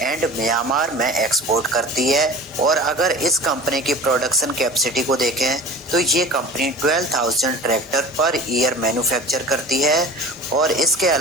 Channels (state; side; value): normal; both; correlation 0.38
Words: and Myanmar में एक्सपोर्ट करती है। और अगर इस कंपनी की प्रोडक्शन कैपेसिटी को देखें तो ये company 12,000 tractor per year manufacture करती है और इसके